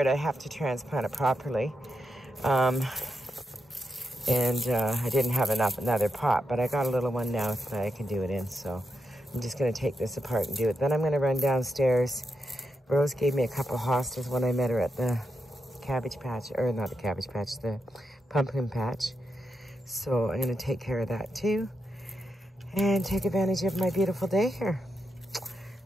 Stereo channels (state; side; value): normal; both; correlation 0.85